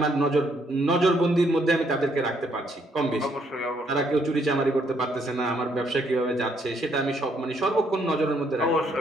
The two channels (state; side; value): normal; both; correlation 0.71